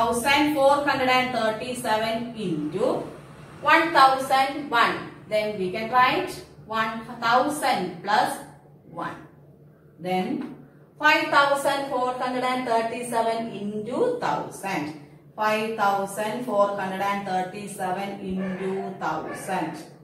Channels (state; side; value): identical; both; correlation 1.00